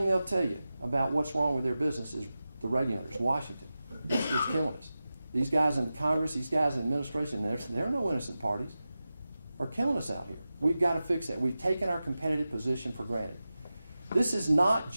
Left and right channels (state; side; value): inverted; both; correlation -0.94